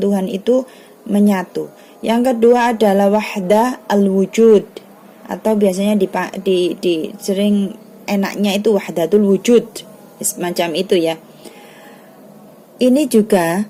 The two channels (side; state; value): both; identical; correlation 1.00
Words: itu menyatu. Yang kedua adalah wahdah al-wujud, atau biasanya di sering enaknya itu wahdatul wujud, semacam itu ya. Ini juga